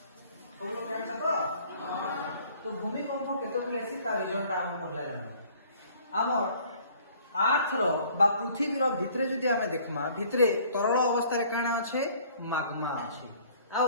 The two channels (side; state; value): both; inverted; correlation -0.55